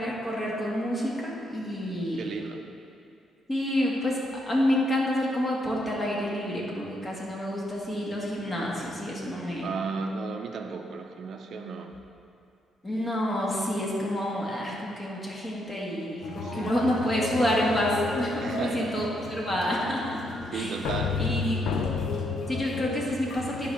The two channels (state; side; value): normal; both; correlation 0.76